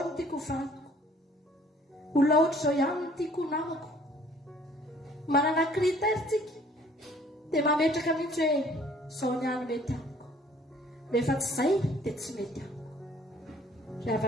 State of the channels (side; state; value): both; normal; correlation 0.56